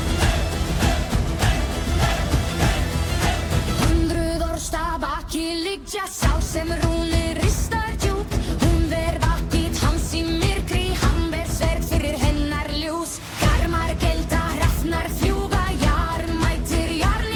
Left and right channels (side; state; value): both; identical; correlation 1.00